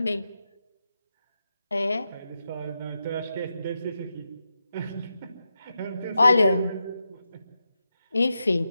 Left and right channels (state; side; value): inverted; both; correlation -0.88